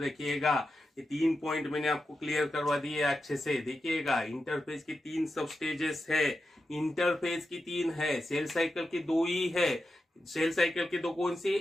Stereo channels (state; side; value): normal; both; correlation 0.89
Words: ये 3 पॉइंट मैंने आपको क्लियर करवा दिए अच्छे से। देखिएगा इंटरफेज की 3 सब स्टेजेस है, इंटरफेज की 3 है, सेल साइकिल की 2 ही है। सेल साइकिल की 2 कौन सी,